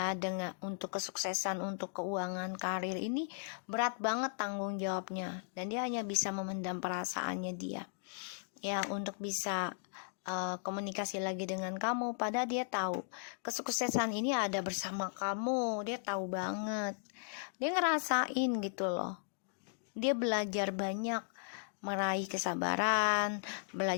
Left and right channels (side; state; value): right; silent; digital silence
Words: dengan untuk kesuksesan, untuk keuangan, karir, ini berat banget tanggung jawabnya, dan dia hanya bisa memendam perasaannya dia ya untuk bisa komunikasi lagi dengan kamu. Padahal dia tahu kesuksesan ini ada bersama kamu, dia tahu banget, dia ngerasain gitu loh. Dia belajar banyak meraih kesabaran,